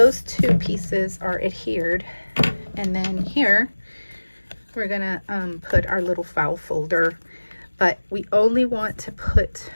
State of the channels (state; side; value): inverted; both; correlation -1.00